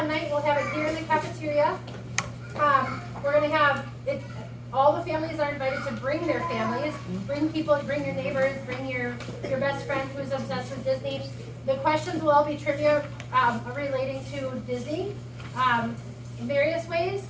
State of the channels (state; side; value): identical; both; correlation 1.00